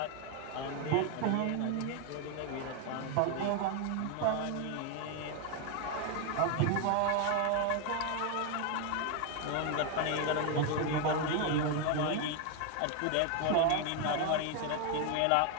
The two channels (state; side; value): different; both; correlation 0.01